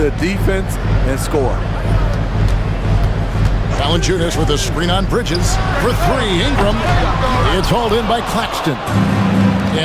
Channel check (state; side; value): identical; both; correlation 1.00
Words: defense and score. Valanciunas with a screen on Bridges. For three, Ingram. It's hauled in by Claxton.